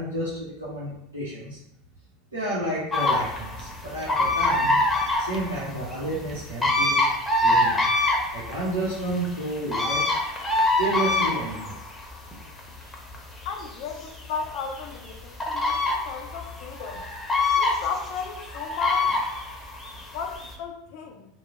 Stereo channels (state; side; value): normal; both; correlation 0.41